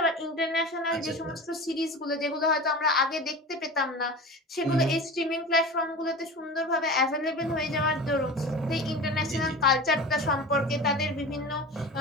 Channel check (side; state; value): both; normal; correlation 0.33